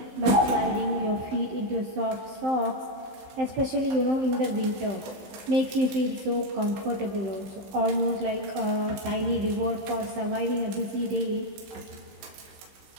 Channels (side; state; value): left; late; 15 ms